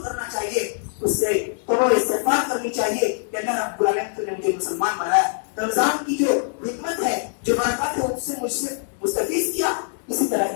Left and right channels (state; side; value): silent; right; 63 dB below the other